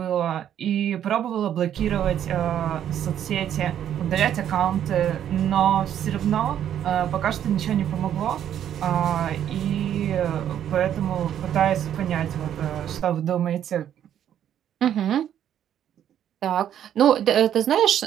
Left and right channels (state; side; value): quieter; left; 10.2 dB